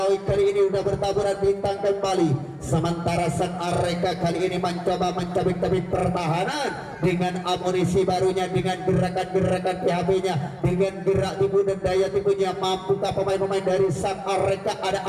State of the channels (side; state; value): both; identical; correlation 1.00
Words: kali ini sudah bertaburan bintang kembali. Sementara sang Areka kali ini mencoba mencabik-cabik pertahanan dengan amunisi barunya, dengan gerakan-gerakan PHB-nya, dengan gerak tipu dan daya tipunya. Mampukah pemain-pemain dari sang Areka? Ada